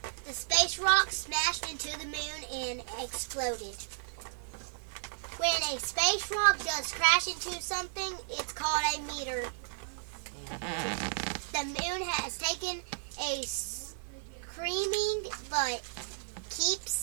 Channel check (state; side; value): silent; left; digital silence